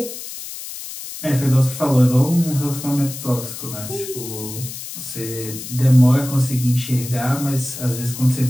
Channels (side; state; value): left; noise; hiss, 10 dB below the sound